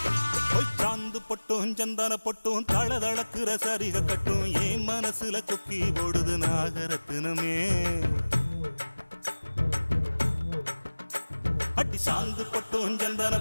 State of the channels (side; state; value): both; inverted; correlation -1.00